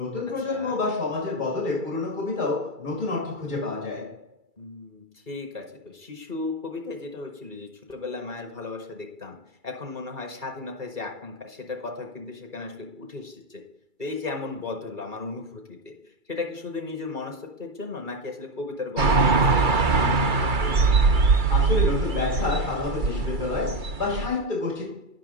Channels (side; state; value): left; late; 2.3 ms